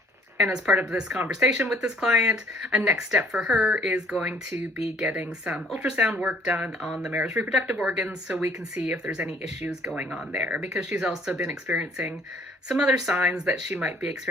And as part of this conversation with this client, a next step for her is going to be getting some ultrasound work done on the mare's reproductive organs so we can see if there's any issues going on there, because she's also been experiencing some other signs that she might be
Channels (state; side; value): normal; both; correlation 0.59